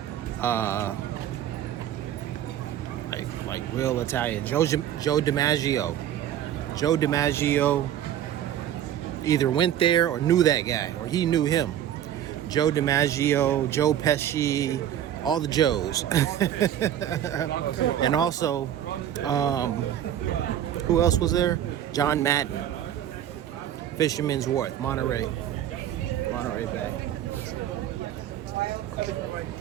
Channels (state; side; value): quieter; left; 10.9 dB